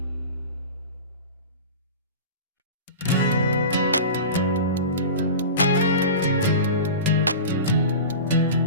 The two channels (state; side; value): inverted; both; correlation -0.32